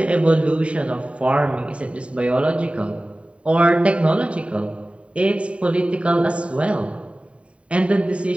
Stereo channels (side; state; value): left; late; 0.062 ms